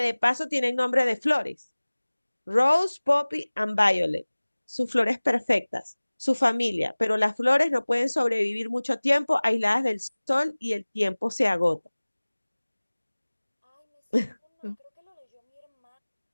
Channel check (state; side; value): inverted; both; correlation -1.00